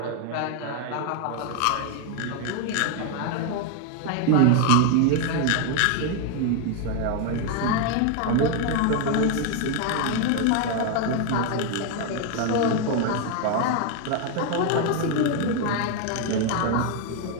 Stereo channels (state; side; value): different; both; correlation 0.01